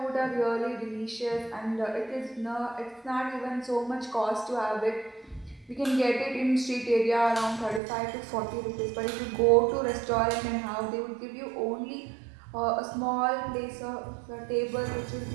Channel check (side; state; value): left; drops out; at 7.8 s